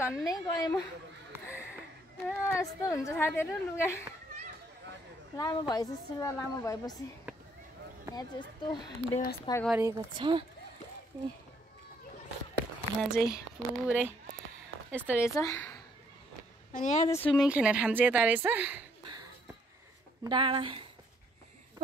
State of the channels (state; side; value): normal; both; correlation 0.67